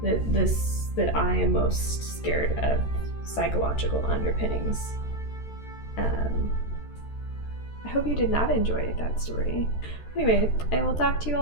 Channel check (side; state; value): right; late; 13 ms